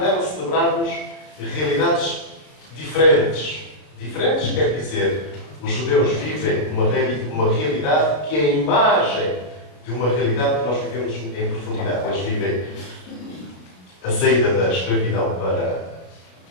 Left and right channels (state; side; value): late; right; 33 ms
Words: nelas celebrarmos realidades diferentes. Diferentes quer dizer, os judeus vivem uma realidade que é a imagem de uma realidade que nós vivemos em profundidade. Eles vivem a saída da escravidão para